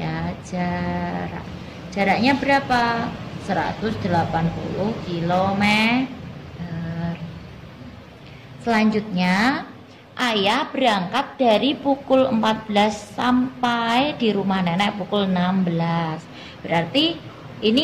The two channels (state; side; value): identical; both; correlation 1.00